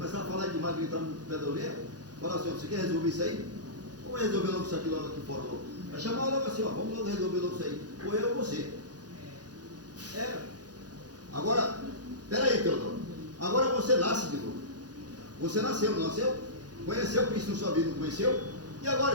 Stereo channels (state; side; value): late; left; 0.69 ms